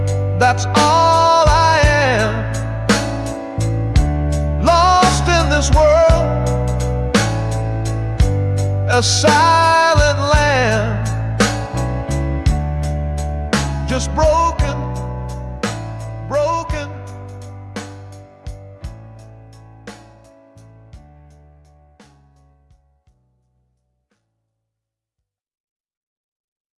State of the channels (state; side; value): identical; both; correlation 1.00